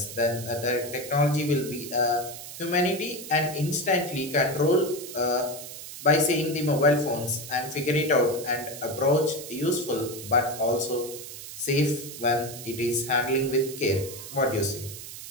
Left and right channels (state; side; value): noise; right; hiss, 11 dB below the sound